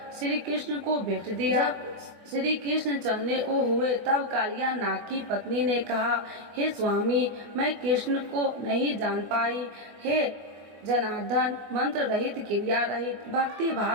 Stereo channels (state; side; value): late; left; 24 ms